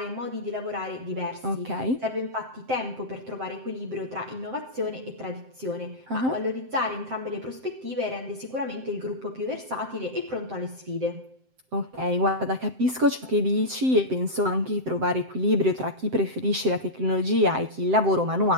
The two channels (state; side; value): late; left; 7.7 ms